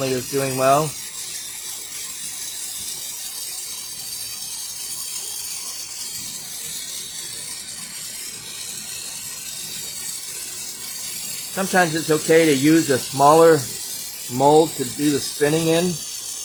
is doing well. Sometimes it's okay to use a smaller mold to do the spinning in.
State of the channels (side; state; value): both; identical; correlation 1.00